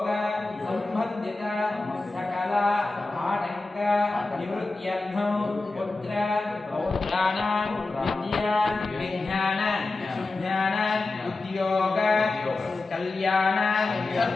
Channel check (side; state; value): right; quieter; 3.4 dB